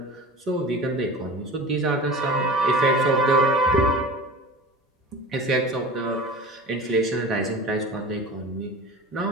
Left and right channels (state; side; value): normal; both; correlation 0.36